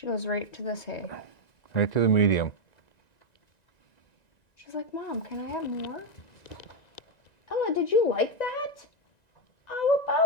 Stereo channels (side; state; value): right; late; 1.9 ms